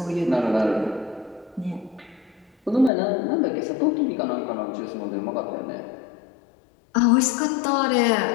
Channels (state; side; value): drops out; right; at 2.9 s